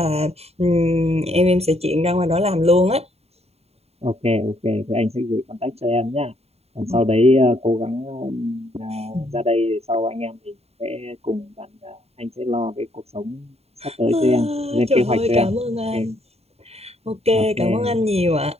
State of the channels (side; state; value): left; late; 0.30 ms